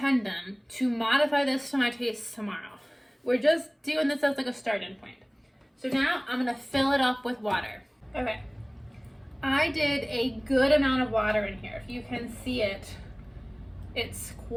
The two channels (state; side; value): identical; both; correlation 1.00